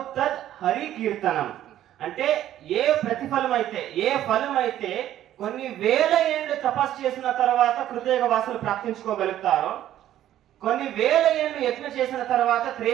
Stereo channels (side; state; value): left; quieter; 12.3 dB